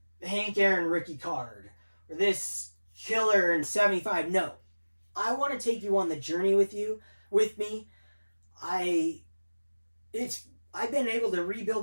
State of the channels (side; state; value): both; inverted; correlation -1.00